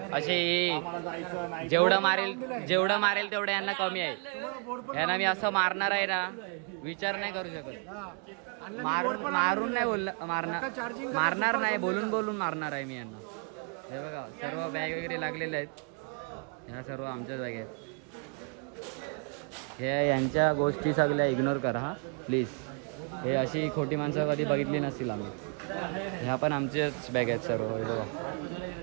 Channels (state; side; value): quieter; left; 39.5 dB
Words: असे. आम्हाला जायचं नाही. जेवढं मारेल तेवढं यांना कमी आहे. यांना मी असं मारणार आहे ना विचार नाही करू शकत. मारून नाही मारणार नाही. बोलून मारणार आहे मी यांना. हे बघा सर्व बॅग वगैरे लागलेले आहेत. ह्या सर्व आमच्या जागे आहेत. हे यांच्या गोष्टी सगळ्या इग्नोर करा हा प्लीज. हे अशी खोटी माणसं कधी बघितली नसतील आम्ही. ह्या पण आमच्याच बॅग आहेत सर्व. हे बघा